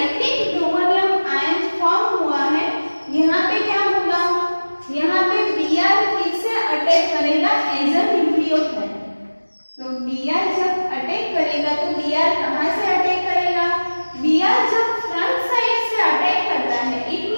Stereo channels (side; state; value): both; inverted; correlation -1.00